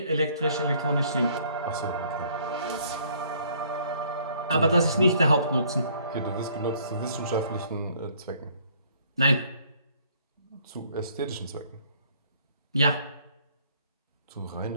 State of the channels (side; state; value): both; inverted; correlation -0.61